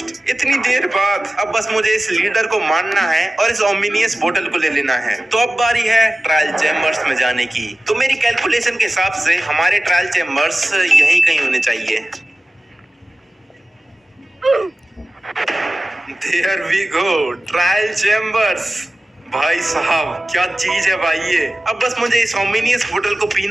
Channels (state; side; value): normal; both; correlation 0.96